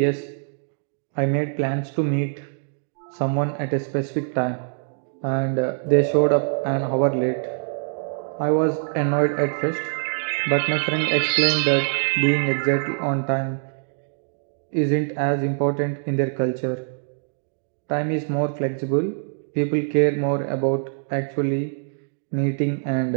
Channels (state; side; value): silent; left; digital silence